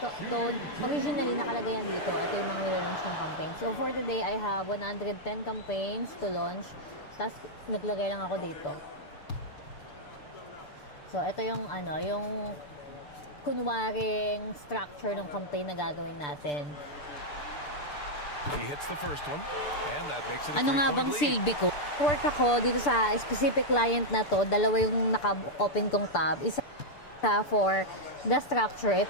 originally nakalagay yan dito. Ito yung mga nilalaunch ng campaign. So, for today, I have 110 campaigns to launch. Tapos, naglagay lang ako dito. So, ito yung, yung kunwaring structure ng campaign na gagawin natin. He hits the first one, and that makes it a Ano nga bang silbi ko? Work ako dito sa specific client na to. Dalawa yung naka-open kong tab. Isa for the structure. Ito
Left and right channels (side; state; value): right; late; 6.8 ms